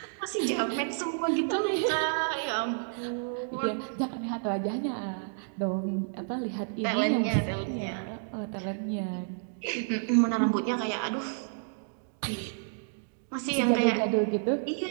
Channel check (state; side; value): silent; left; digital silence